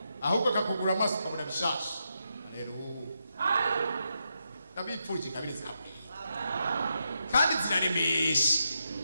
ahubwo akakugura amaso ukabona bishasha. Rero ndabipfuje kabiri zawe kandi ziraremesha.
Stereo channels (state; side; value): inverted; both; correlation -0.83